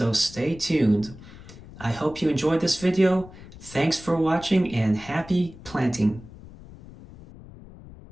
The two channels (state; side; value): noise; left; rumble, 18 dB below the sound